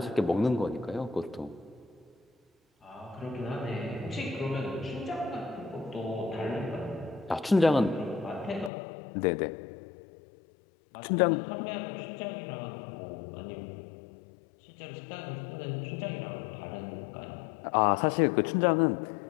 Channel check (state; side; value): drops out; right; at 8.7 s